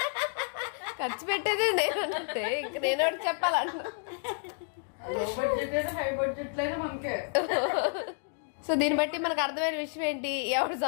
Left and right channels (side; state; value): right; silent; 57 dB below the other